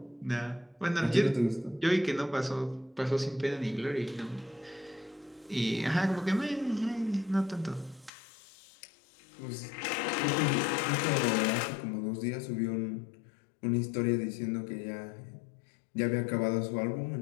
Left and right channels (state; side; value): drops out; right; at 8.1 s